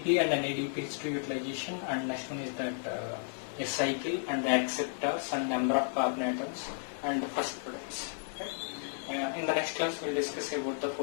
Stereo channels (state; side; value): silent; right; 56 dB below the other